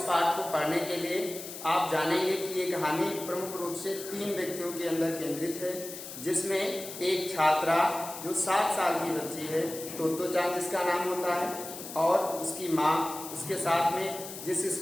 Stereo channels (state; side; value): noise; left; hiss, 11 dB below the sound